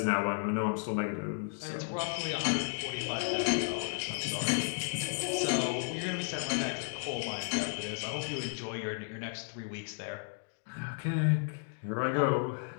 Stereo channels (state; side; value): silent; right; 55 dB below the other